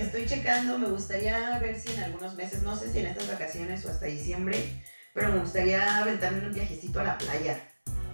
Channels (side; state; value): both; inverted; correlation -1.00